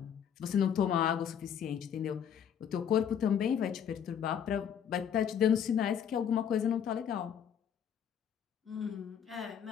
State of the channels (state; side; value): quieter; right; 8.4 dB